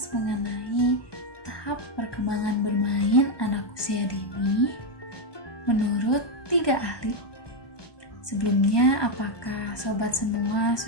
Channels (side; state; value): right; late; 1.2 ms